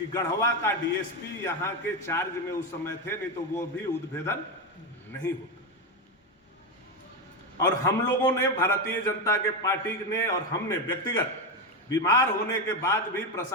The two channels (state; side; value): normal; both; correlation 0.12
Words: गढ़वा का डीएसपी यहाँ के चार्ज में उस समय थे, नहीं तो वो भी उद्भेदन नहीं होता। और हम लोगों ने, भारतीय जनता के पार्टी ने और हमने व्यक्तिगत बीमार होने के बाद भी